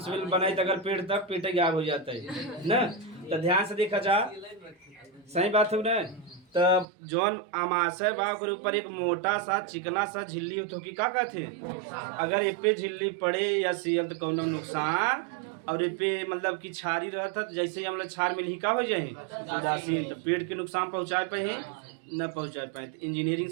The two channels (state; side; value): drops out; left; at 6.9 s